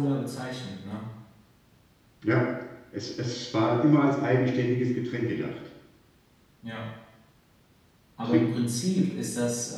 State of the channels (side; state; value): both; identical; correlation 1.00